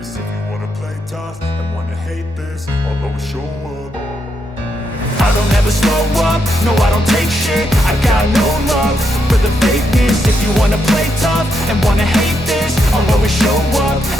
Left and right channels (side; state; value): both; normal; correlation 0.80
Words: If you wanna play tough and wanna hate this, I'll always show up. I don't ever slow up, no I don't take shit. I got no love for the fakeness. If you wanna play tough and wanna hate this, I'll always show up